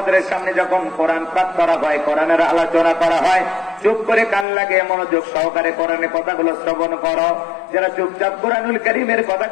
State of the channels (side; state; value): right; drops out; at 4.5 s